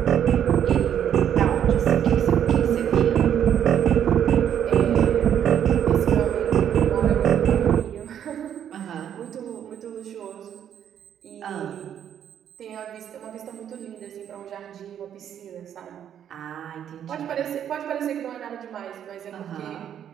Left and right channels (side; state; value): left; quieter; 9.5 dB